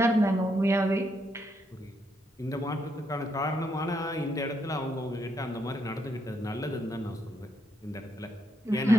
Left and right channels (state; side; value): normal; both; correlation 0.78